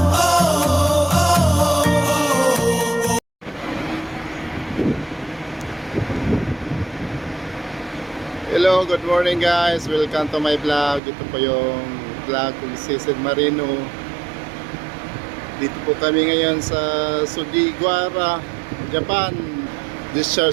good morning guys. Welcome to my vlog. Ito po yung vlog kung Sisig Marino. Dito po kami ngayon sa Sugiwara, Japan.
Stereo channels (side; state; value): left; drops out; at 11.0 s